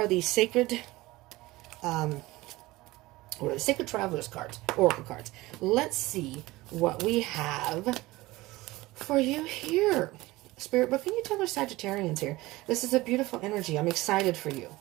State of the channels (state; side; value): quieter; left; 19.6 dB